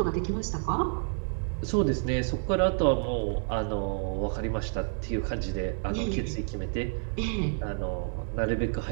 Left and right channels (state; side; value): silent; left; 58 dB below the other